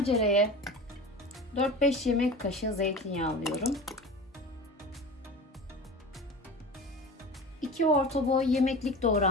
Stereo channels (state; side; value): normal; both; correlation 0.33